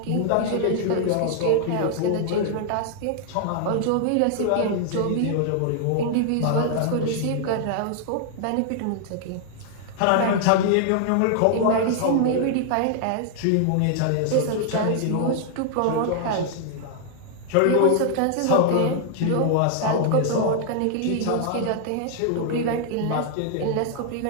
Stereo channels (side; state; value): both; different; correlation 0.00